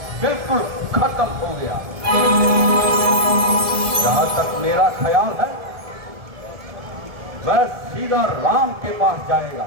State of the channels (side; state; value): left; late; 1.7 ms